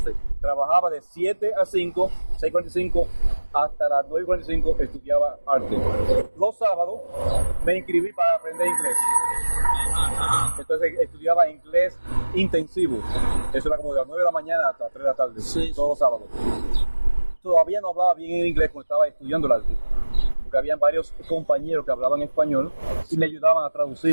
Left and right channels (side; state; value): both; inverted; correlation -1.00